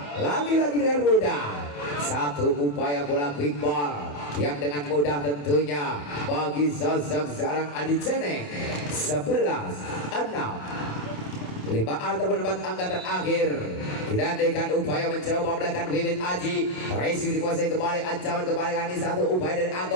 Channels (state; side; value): late; right; 28 ms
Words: Lagi-lagi dengan mudah. Satu upaya bola quick ball yang dengan mudah tentunya bagi sosok seorang Adi Ceneng. 11-6. 5 ataupun 4 angka terakhir. Kita dengan upaya mencoba meledakan Wiwit Aji. Resi dikuasai kembali, ancaman kembali kali satu upaya dari